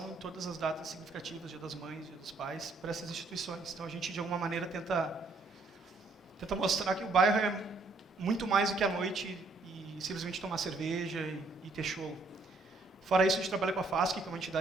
em todas as datas significativas, Dia das Mães, Dia dos Pais, para essas instituições. Então a gente, de alguma maneira, tenta mostrar que o bairro é muito mais do que a noite e simplesmente tomar cerveja e ter show. Fora isso, a gente trabalha com a FASC, que é uma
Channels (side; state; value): left; quieter; 3.3 dB